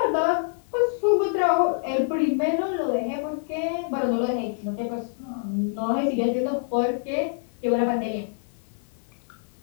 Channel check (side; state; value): right; silent; digital silence